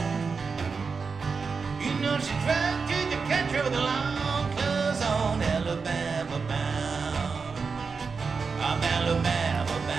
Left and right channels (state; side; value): quieter; left; 5.0 dB